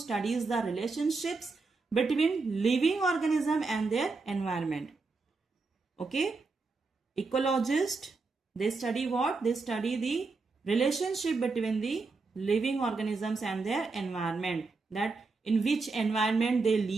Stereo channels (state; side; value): quieter; left; 4.0 dB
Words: the relationships between living organism and their environment. Okay, ecologist, they study what? They study the relationship between the living organisms and their environment, that in which environment they